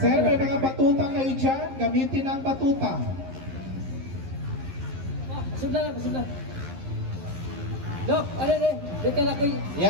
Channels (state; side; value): late; left; 11 ms